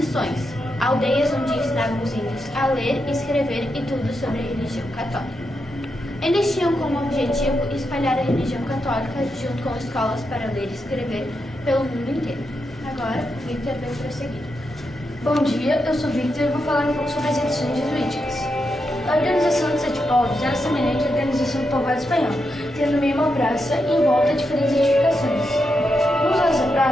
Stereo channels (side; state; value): both; normal; correlation 0.85